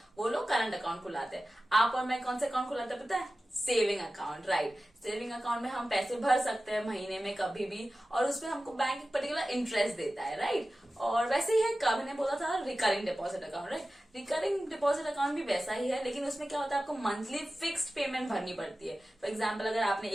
वो लोग करंट अकाउंट खुलाते हैं. आप और मैं कौन से अकाउंट खुलाते हैं पता है? Saving account, right? Saving account में हम पैसे भर सकते हैं महीने में कभी भी, और उसमें हमको बैंक एक पर्टिकुलर इंटरेस्ट देता है, राइट? और वैसे ही है, कभी ने बोला था recurring deposit account, right? Recurring deposit account भी वैसा ही है, लेकिन उसमें क्या होता है, आपको मंथली फिक्स्ड पेमेंट भरनी पड़ती है. फॉर एग्जाम्पल, अगर आपने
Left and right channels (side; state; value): both; normal; correlation 0.95